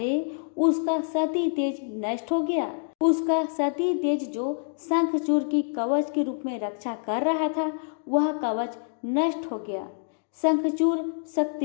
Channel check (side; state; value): right; silent; digital silence